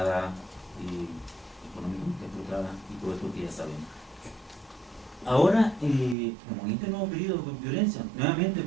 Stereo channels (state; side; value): drops out; left; at 6.2 s